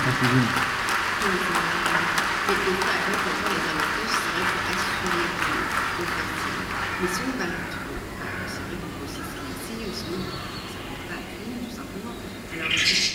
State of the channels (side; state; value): both; identical; correlation 1.00